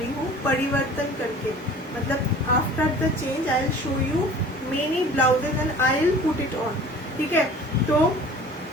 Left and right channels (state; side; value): normal; both; correlation 0.45